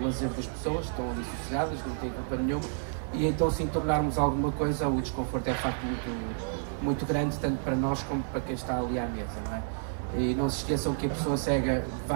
lazer das pessoas, estão ali sossegadas, não têm culpa nenhuma, e então, se tornarmos alguma coisa, o desconforto é de facto muito grande, tanto para nós como para quem está ali à mesa, não é? E não se esqueçam que a pessoa cega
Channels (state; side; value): silent; left; digital silence